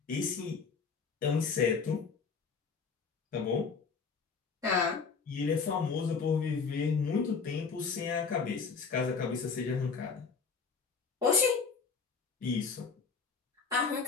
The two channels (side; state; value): right; quieter; 5.3 dB